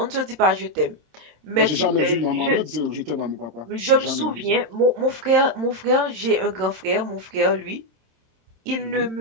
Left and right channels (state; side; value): late; left; 27 ms